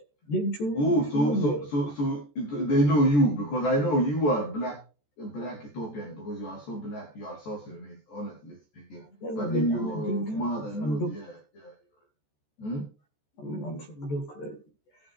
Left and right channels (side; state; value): right; late; 14 ms